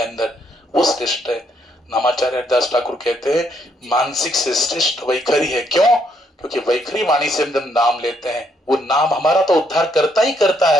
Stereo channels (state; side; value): normal; both; correlation 0.72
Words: वो श्रेष्ठ है। नामाचार्य हरिदास ठाकुर कहते हैं मानसिक से श्रेष्ठ वैखरी है। क्यों, क्योंकि वैखरी वाणी से हम जब नाम लेते हैं वो नाम हमारा तो उद्धार करता ही करता